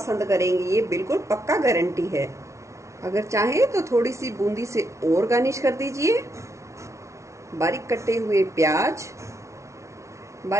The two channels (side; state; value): left; late; 0.14 ms